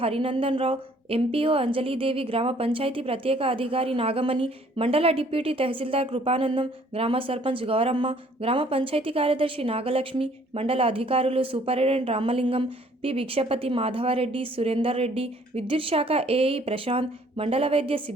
హరినందన్ రావు, ఎంపీఓ అంజలీదేవి, గ్రామ పంచాయతీ ప్రత్యేక అధికారి నాగమణి, మండల డిప్యూటీ తహసీల్దార్ కృపానందం, గ్రామ సర్పంచ్ గౌరమ్మ, గ్రామ పంచాయతీ కార్యదర్శి నాగలక్ష్మి, మండల అధికారులు సూపరింటెండెంట్ రామలింగం, పి భిక్షపతి, మాధవరెడ్డి, సురేందర్ రెడ్డి, విద్యుత్ శాఖ ఏఈ ప్రశాంత్, మండల వైద్య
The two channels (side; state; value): both; normal; correlation 0.59